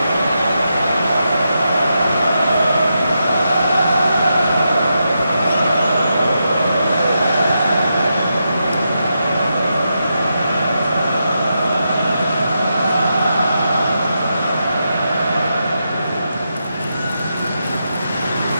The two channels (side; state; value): both; inverted; correlation -0.85